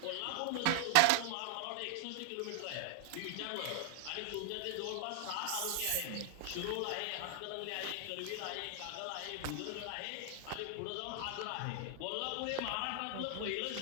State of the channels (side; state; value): both; different; correlation 0.00